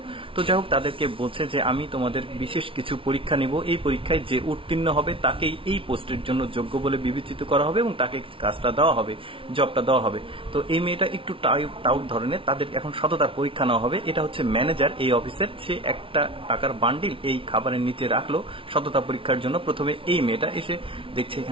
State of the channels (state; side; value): late; left; 0.25 ms